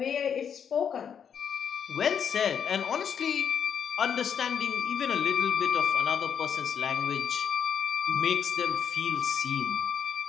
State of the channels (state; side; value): quieter; right; 7.7 dB